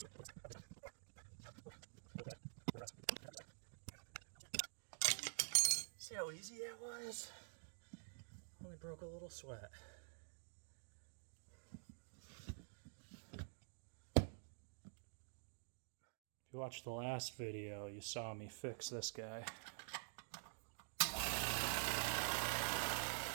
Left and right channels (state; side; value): silent; left; digital silence